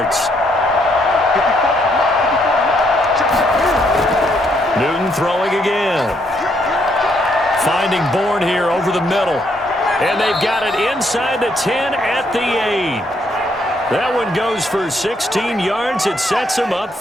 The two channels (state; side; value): normal; both; correlation 0.72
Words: Newton throwing again. Finding Bourne here over the middle. And they've got it inside the 10 at the 8. That one goes for 16 yards. It sets him up